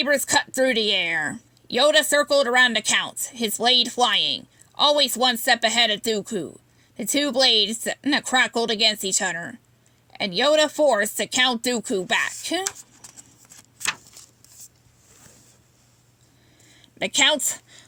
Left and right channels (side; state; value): both; identical; correlation 1.00